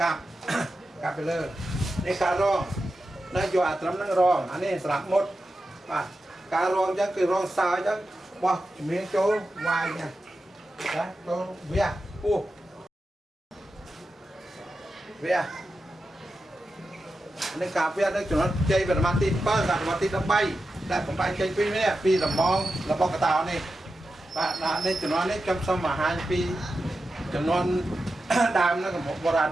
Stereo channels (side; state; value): both; normal; correlation 0.91